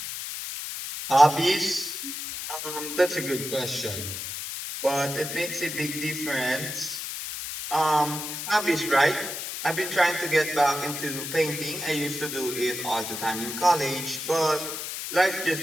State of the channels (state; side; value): noise; left; hiss, 6 dB below the sound